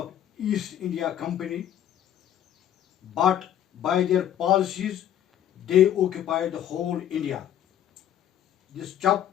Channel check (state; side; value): quieter; right; 10.9 dB